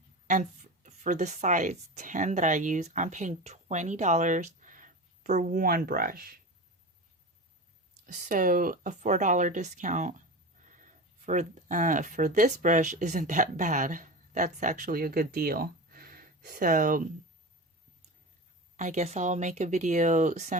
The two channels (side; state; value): both; normal; correlation 0.27